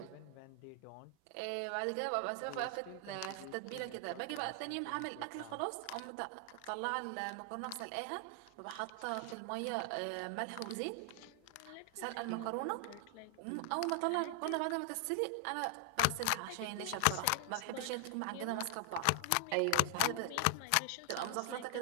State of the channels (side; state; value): both; different; correlation 0.00